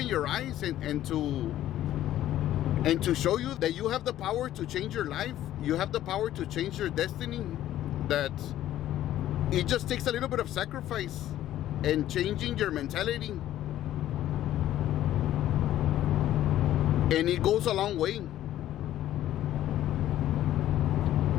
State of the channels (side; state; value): right; quieter; 12.9 dB